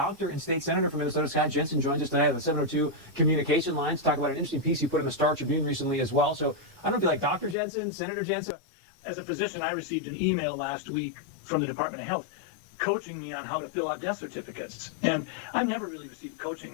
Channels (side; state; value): right; drops out; at 7.6 s